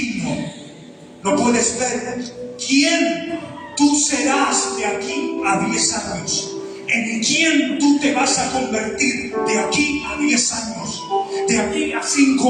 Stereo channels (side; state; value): both; identical; correlation 1.00